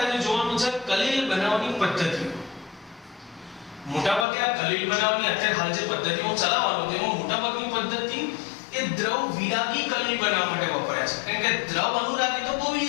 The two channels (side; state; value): right; drops out; at 4.2 s